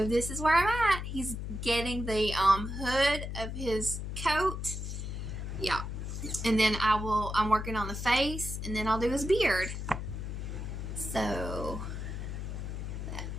this is where I'm at. He's getting the hood of his coat. Yeah. And then I'm working on the face, and then I'll do his beard. So,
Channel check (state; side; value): noise; left; hum, 5 dB below the sound